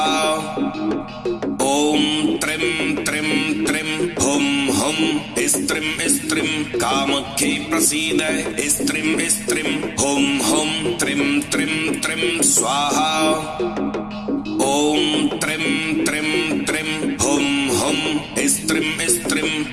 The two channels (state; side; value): identical; both; correlation 1.00